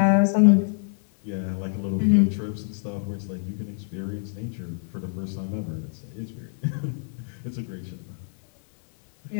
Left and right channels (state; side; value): silent; right; 61 dB below the other